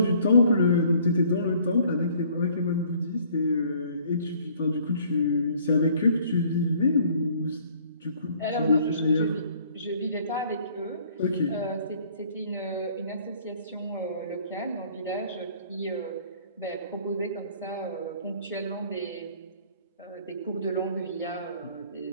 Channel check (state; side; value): inverted; both; correlation -0.58